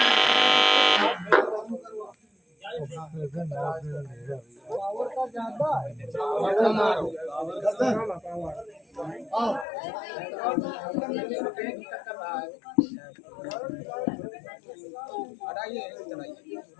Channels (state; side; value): drops out; right; at 9.7 s